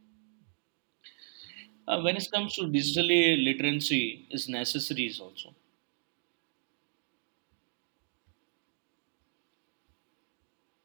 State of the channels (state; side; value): silent; left; digital silence